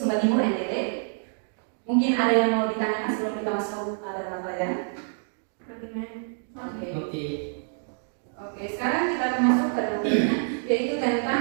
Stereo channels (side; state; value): left; silent; digital silence